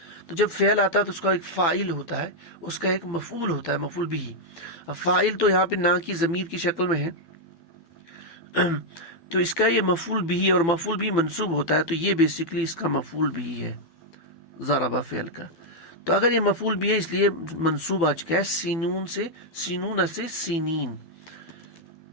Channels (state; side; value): late; right; 12 ms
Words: تو جب فعل آتا ہے تو اس کا ایک فاعل ہوتا ہے، اس کا ایک مفعول ہوتا ہے، مفعول بھی. فاعل تو یہاں پہ نا کی ضمیر کی شکل میں ہے، تو اس کا یہ مفعول بھی اور مفعول بھی منصوب ہوتا ہے، تو یہ بیسکلی اس کا مفعول بھی ہے ضربہ فعل کا. تو اگر یہ مفعول بھی ہے اس لیے منصوب آ چکا ہے سینون سے، سینون سے سینین،